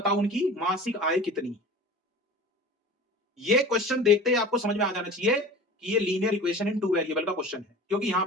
उनकी मासिक आय कितनी। ये क्वेश्चन देखते ही आपको समझ में आ जाना चाहिए कि ये लीनियर इक्वेशन इन 2 वेरिएबल का क्वेश्चन है, क्योंकि यहां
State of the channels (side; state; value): both; normal; correlation 0.38